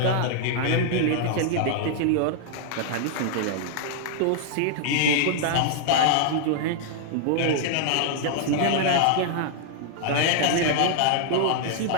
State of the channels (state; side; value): different; both; correlation -0.01